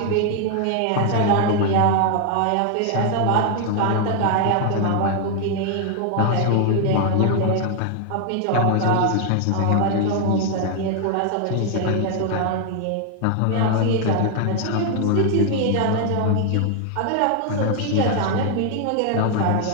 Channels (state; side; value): different; both; correlation 0.00